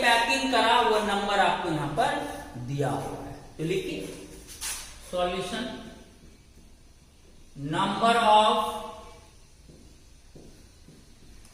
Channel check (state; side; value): identical; both; correlation 1.00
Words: पैकिंग करा, वो नंबर आपको यहां पर दिया हुआ है। तो लिखिए solution, number of